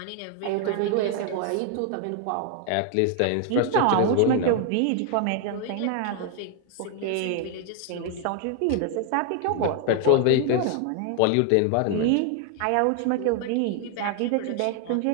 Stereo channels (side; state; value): both; different; correlation 0.00